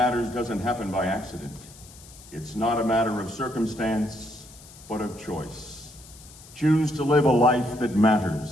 doesn't happen by accident. It's not a matter of circumstance, but of choice. Choose to live a life that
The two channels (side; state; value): left; noise; hiss, 20 dB below the sound